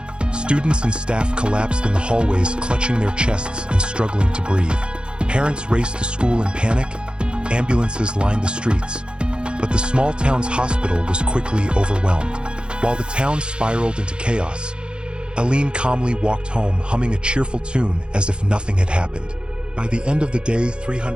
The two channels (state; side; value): late; left; 0.053 ms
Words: Students and staff collapsed in the hallways, clutching their chests and struggling to breathe. Parents raced to school in panic. Ambulances lined the streets. But the small town's hospital was quickly overwhelmed. While the town spiraled into chaos, Aileen calmly walked home, humming a cheerful tune as if nothing had happened. By the end of the day,